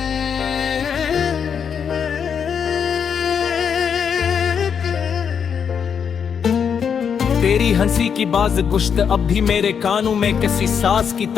तेरी हंसी की बाज गुश्त अब भी मेरे कानों में किसी साज की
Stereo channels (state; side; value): quieter; right; 7.2 dB